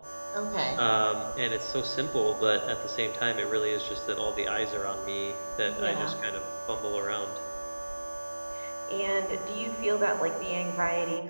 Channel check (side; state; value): both; inverted; correlation -1.00